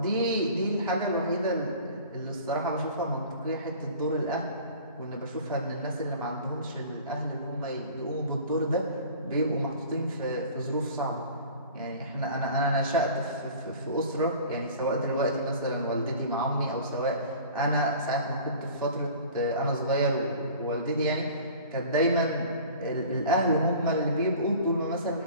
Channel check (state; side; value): inverted; both; correlation -0.44